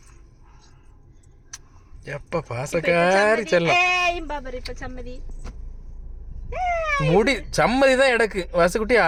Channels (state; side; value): identical; both; correlation 1.00